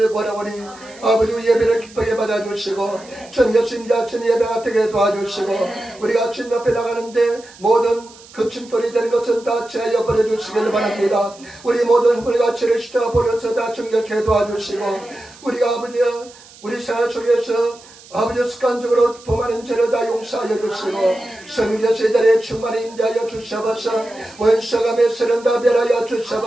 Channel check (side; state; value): right; noise; hiss, 22 dB below the sound